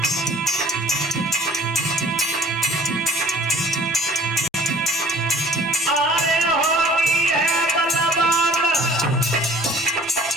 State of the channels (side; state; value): both; normal; correlation 0.52